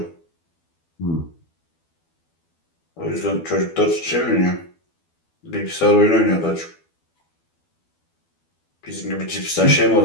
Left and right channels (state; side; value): late; right; 12 ms